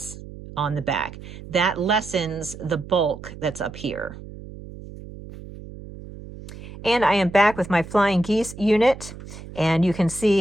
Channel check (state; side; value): noise; right; hum, 14 dB below the sound